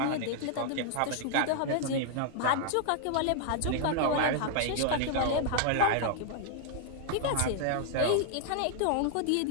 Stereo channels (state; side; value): different; both; correlation -0.01